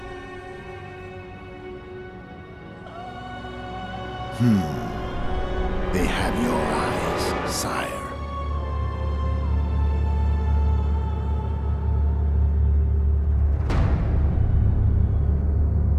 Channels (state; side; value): identical; both; correlation 1.00